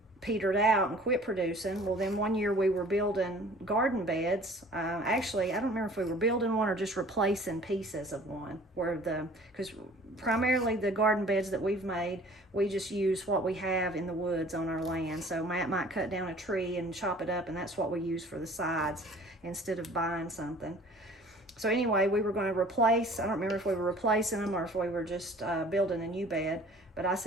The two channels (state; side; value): normal; both; correlation 0.49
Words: petered out and quit producing. Well, then one year we were building garden beds. Actually, I don't remember if we were building one or just replacing pieces of one, because primarily the garden beds that we've made, we just use what we have in the woods on our land. So Matt might cut down a tree and chop it up, and that's what we use for the sides instead of buying something. So anyway, we were going to replace, I don't remember if we were replacing them or if we were just building a new bed. But I